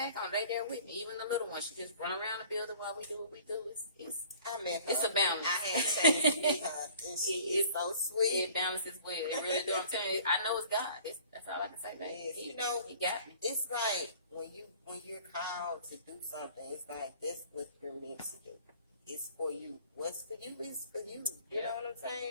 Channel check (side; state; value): both; inverted; correlation -0.50